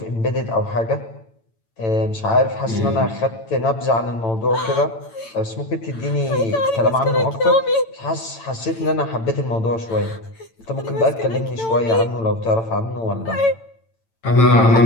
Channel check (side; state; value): right; late; 8.9 ms